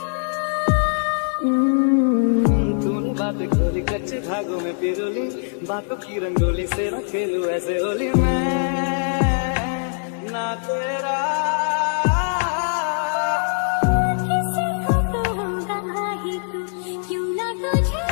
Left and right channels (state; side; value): silent; right; digital silence